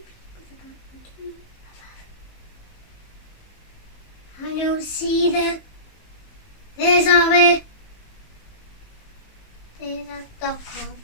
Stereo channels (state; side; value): late; right; 19 ms